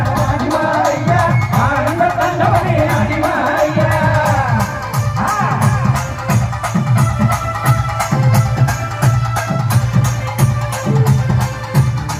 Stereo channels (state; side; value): identical; both; correlation 1.00